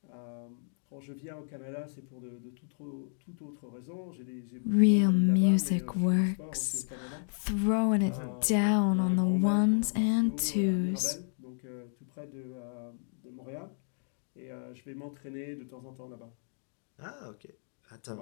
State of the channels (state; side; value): silent; right; digital silence